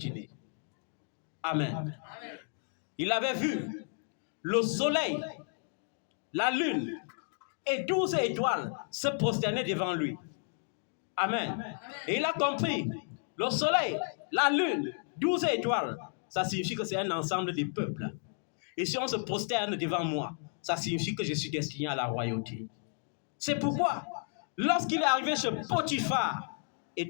Amen. Il avait vu le soleil, la lune et 12 étoiles se prosterner devant lui. Amen. Et il a compris, le soleil, la lune, 12 étoiles, ça signifie que c'est un ensemble de peuples. Et si on se prosterne devant moi, ça signifie que je suis destiné à la royauté. C'est pourquoi, lorsqu'il est arrivé chez Potiphar, et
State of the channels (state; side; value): silent; right; 56 dB below the other